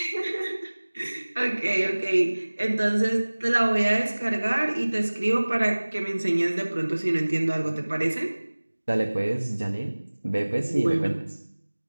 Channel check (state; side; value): inverted; both; correlation -1.00